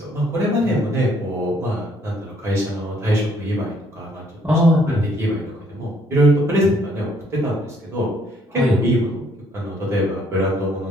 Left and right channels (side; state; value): both; normal; correlation 0.66